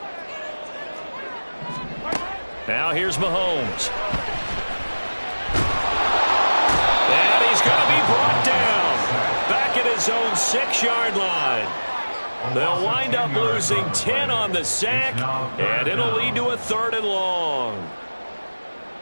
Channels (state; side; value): inverted; both; correlation -1.00